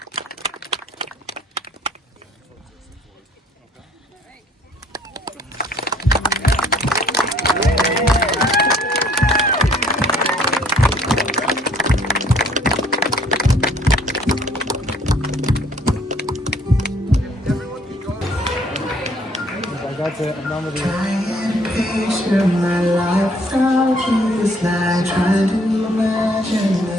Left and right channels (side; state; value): both; normal; correlation 0.60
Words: That's it. I'm done with you. Picture my life without you. It's like trying to imagine the